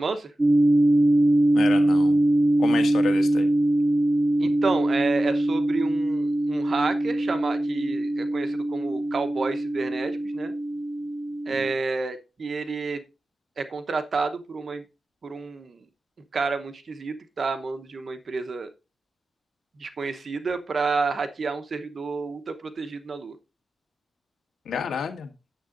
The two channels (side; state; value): both; normal; correlation 0.94